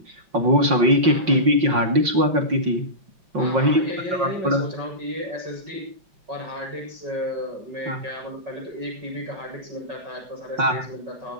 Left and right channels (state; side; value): late; left; 5.6 ms